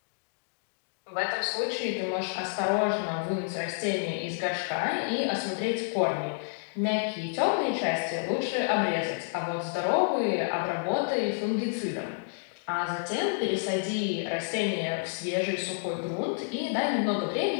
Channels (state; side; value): silent; right; digital silence